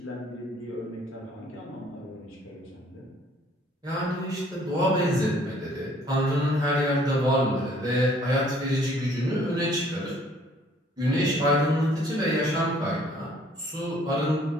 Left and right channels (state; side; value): normal; both; correlation 0.59